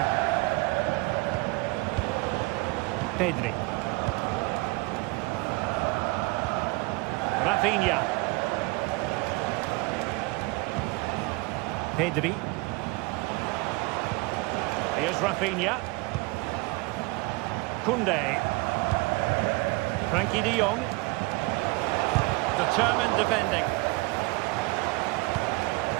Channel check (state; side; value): quieter; left; 25.2 dB